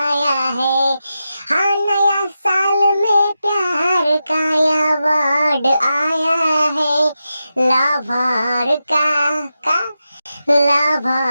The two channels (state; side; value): inverted; both; correlation -0.90